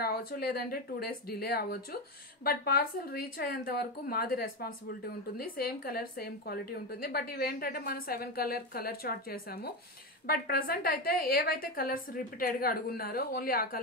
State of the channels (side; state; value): both; normal; correlation 0.15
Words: రావచ్చు, లేదంటే 2 days డిలే అవ్వచ్చు. బట్ పార్సల్ రీచ్ అయ్యేంత వరకు మాది రెస్పాన్సిబిలిటీ ఉంటుంది. సేమ్ కలర్ సేమ్ క్వాలిటీ ఉంటుంది. బట్ ఇవేంటంటే మనం 7 కలర్ చార్ట్ చేసాము. బట్ ప్రెసెంట్ అయితే ఏవైతే కలర్స్ రిపీటెడ్ గా అడుగున్నారో ఓన్లీ ఆ